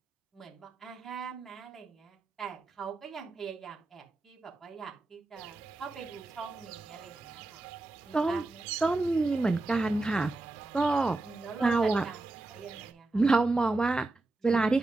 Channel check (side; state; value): left; quieter; 3.1 dB